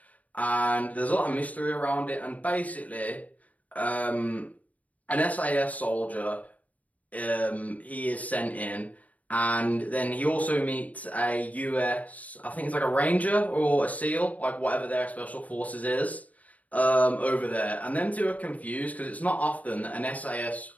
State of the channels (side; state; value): right; late; 0.072 ms